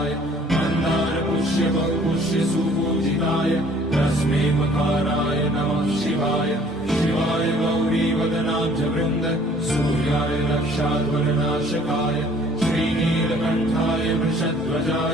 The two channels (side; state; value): both; normal; correlation 0.56